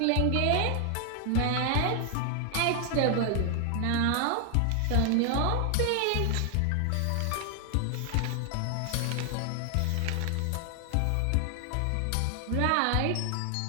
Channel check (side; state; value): both; different; correlation 0.00